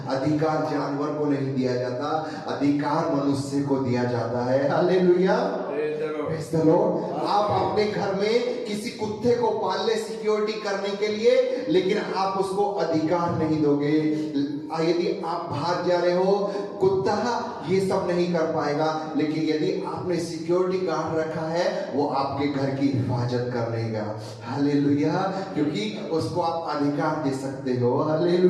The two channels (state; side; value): identical; both; correlation 1.00